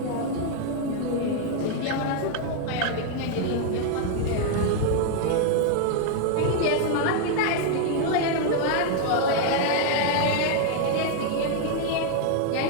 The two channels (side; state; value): both; different; correlation 0.00